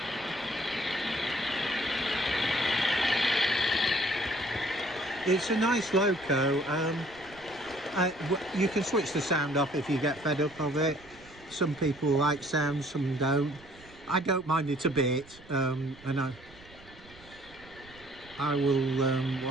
it's a nice loco. You can switch the sound off if you get fed up of it. Some people like sound, some don't. I don't mind it a bit, and I will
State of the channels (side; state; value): right; noise; rumble, 23 dB below the sound